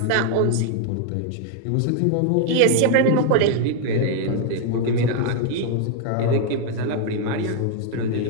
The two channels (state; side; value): different; both; correlation 0.00